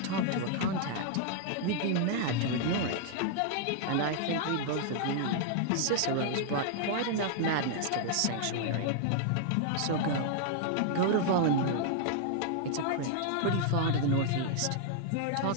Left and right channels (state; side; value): different; both; correlation 0.00